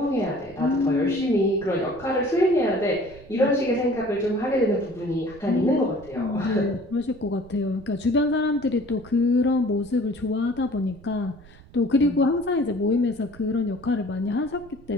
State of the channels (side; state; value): right; noise; rumble, 22 dB below the sound